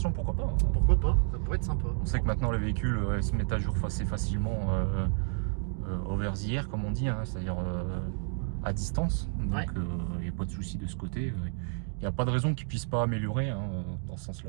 pourquoi pas? Pourquoi pas? Ça pourrait être sympa. On sait que maintenant les véhicules se mettent à jour assez facilement over the air, comme on dit, hein, c'est-à-dire à distance. Donc il n'y a pas de souci de ce côté. Il n'y a pas de raison qu'ils ne puissent pas améliorer dans ce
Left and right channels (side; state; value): left; silent; 57 dB below the other